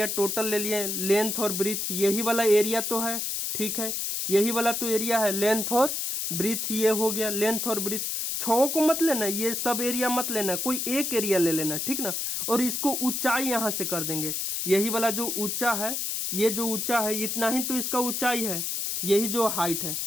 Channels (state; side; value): noise; left; hiss, 1 dB below the sound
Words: टोटल ले लिए, लेंथ और ब्रीथ यही वाला एरिया तो है, ठीक है, यही वाला तो एरिया है, लेंथ और ब्रीथ ये हो गया, लेंथ और ब्रीथ, छओं को मत लेना, ये सब एरिया मत लेना, कोई एक एरिया ले लेना, ठीक ना। और इसको ऊंचाई यहाँ से कर देंगे, यही वाला जो ऊंचा है, ये जो ऊंचा है इतना ही तो इसका ऊंचाई है, यही जो हाइट है।